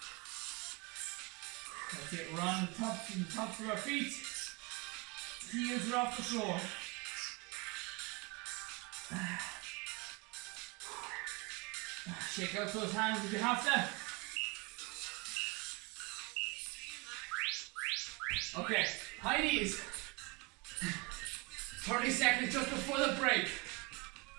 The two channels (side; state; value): left; quieter; 28.2 dB